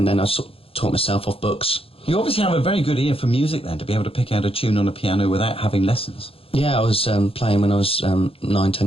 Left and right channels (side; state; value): right; late; 0.27 ms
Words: then I sort of taught myself off books. You obviously have a very good ear for music then, to be able to pick out a tune on a piano without having lessons. Yeah, I was playing when I was 9, 10